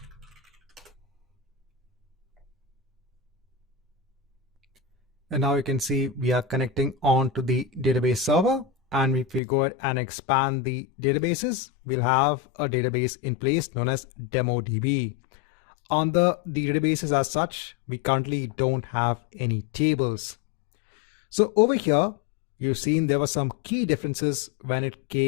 And now you can see we are connecting on to the database server. and if we go ahead and expand the databases, we'll have a database in place known as DemoDB. On the databases as such, we currently don't have any tables. So over here, you've seen there were some key differences when it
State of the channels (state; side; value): drops out; right; at 9.4 s